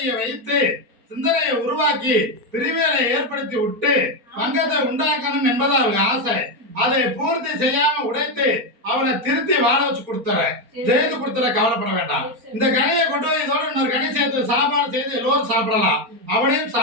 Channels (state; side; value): late; left; 4.3 ms